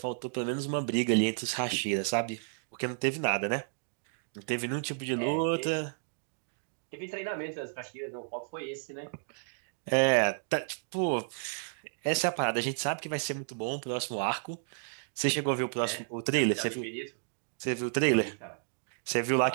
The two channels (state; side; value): silent; left; digital silence